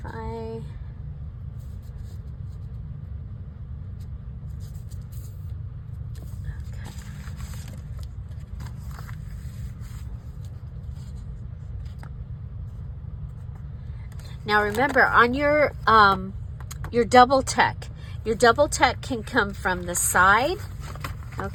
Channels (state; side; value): identical; both; correlation 1.00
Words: I, now remember, on your double tuck can come from the side,